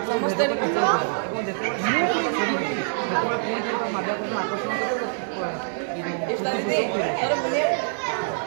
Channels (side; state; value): left; silent; 62 dB below the other